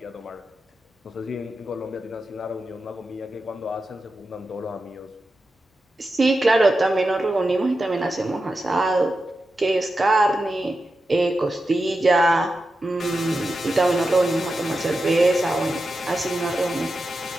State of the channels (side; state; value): both; normal; correlation 0.90